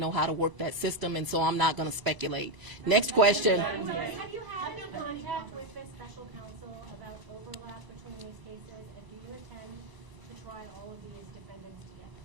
how to work that system, and so I'm not going to speculate. Next question. Have you had any contact with the special counsel about overlap between these cases, and do you intend to try all of these defendants together?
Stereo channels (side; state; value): left; late; 1.0 ms